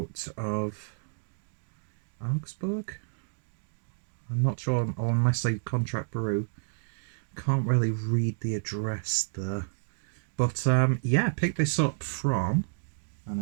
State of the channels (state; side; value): silent; left; digital silence